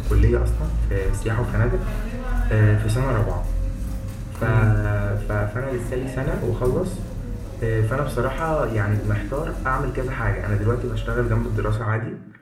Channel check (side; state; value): both; identical; correlation 1.00